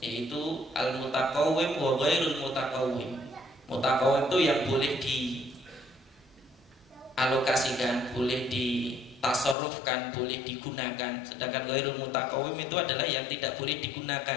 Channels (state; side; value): drops out; right; at 9.6 s